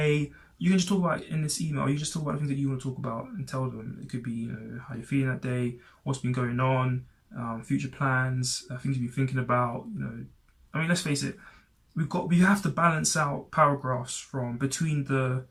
You can just talk about it in this email. You just talk about the things that you want to talk about and tell them. It could be how you're feeling that day, what's been going on, future plans, things you've been thinking about. I mean, let's face it. We have to balance out paragraphs from between the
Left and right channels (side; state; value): both; identical; correlation 1.00